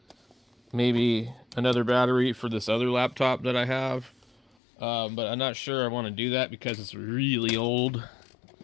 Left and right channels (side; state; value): right; drops out; at 4.5 s